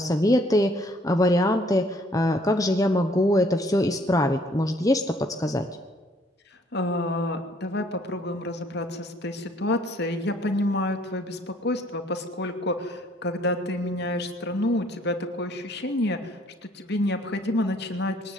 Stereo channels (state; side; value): normal; both; correlation 0.62